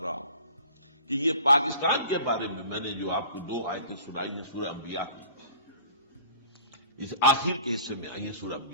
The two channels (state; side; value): inverted; both; correlation -0.47